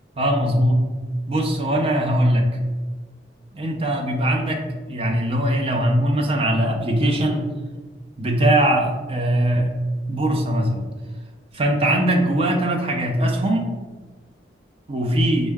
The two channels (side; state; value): both; normal; correlation 0.64